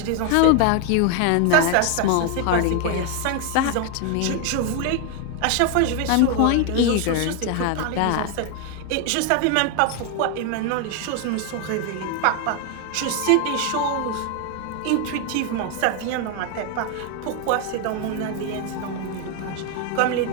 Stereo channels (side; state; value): both; different; correlation 0.01